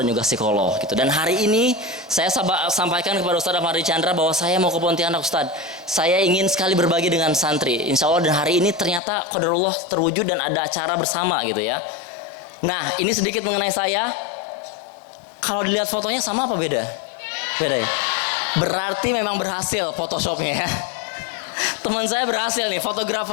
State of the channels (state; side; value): drops out; right; at 9.0 s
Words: dan juga psikolog gitu. Dan hari ini saya sampaikan kepada Ustadz Ahmadi Chandra bahwa saya mau ke Pontianak Ustadz. Saya ingin sekali berbagi dengan santri. Insya Allah dan hari ini ternyata qadarullah terwujud dan ada acara bersama gitu ya. Nah ini sedikit mengenai saya. Kalau dilihat fotonya sama apa beda? Beda ya? Berarti memang berhasil Photoshopnya ya. Teman saya berhasil nih,